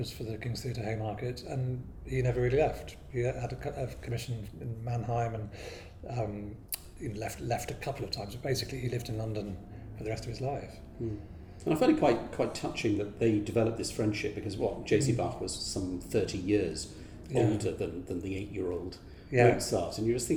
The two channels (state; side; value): identical; both; correlation 1.00